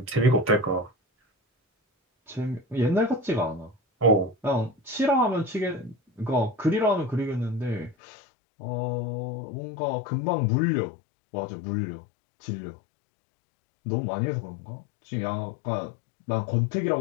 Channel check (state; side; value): drops out; right; at 8.0 s